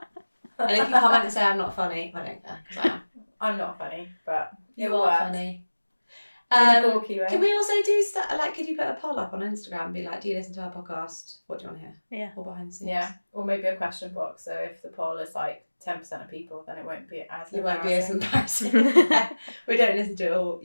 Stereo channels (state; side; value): inverted; both; correlation -1.00